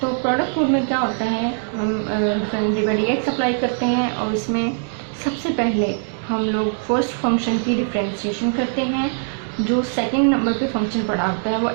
तो प्रोडक्ट रूल में क्या होता है, हम डिवाइड अप्लाई करते हैं और इसमें सबसे पहले हम लोग फर्स्ट फंक्शन की डिफ्रेंशिएशन करते हैं। जो सेकंड नंबर पे फंक्शन पड़ा होता है वो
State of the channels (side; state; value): left; silent; 65 dB below the other